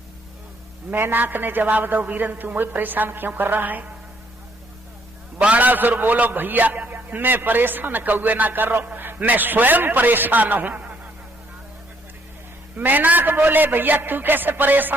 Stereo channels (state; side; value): normal; both; correlation 0.68